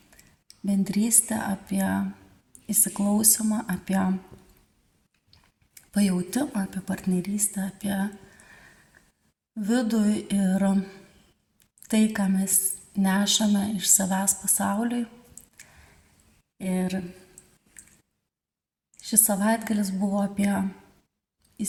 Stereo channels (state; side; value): identical; both; correlation 1.00